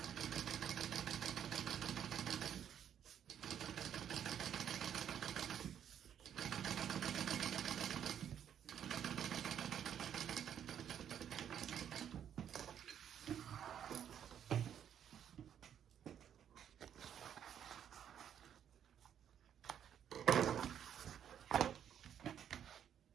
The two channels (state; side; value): quieter; left; 9.2 dB